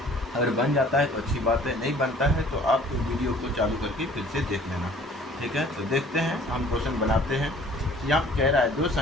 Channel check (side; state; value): both; normal; correlation 0.52